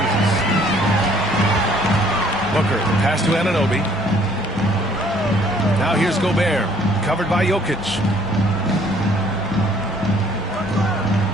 Booker, pass to Anunoby. Now here's Gobert, covered by Jokic.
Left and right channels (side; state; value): both; normal; correlation 0.60